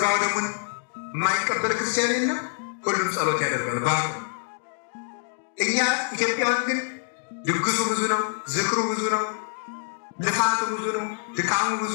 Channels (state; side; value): silent; right; digital silence